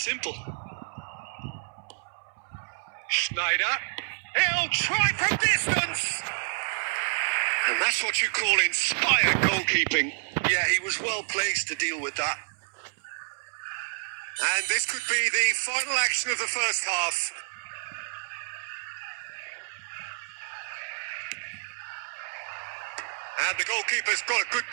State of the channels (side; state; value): left; silent; 59 dB below the other